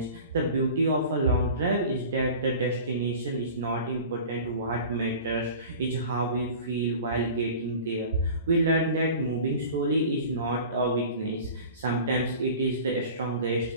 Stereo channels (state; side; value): inverted; both; correlation -0.40